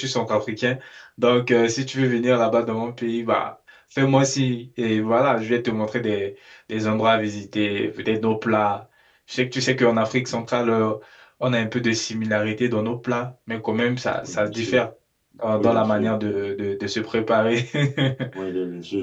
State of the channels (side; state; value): both; identical; correlation 1.00